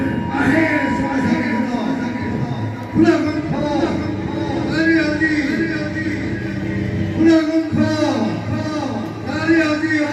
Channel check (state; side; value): identical; both; correlation 1.00